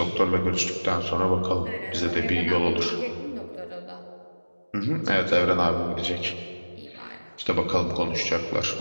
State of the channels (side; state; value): both; inverted; correlation -1.00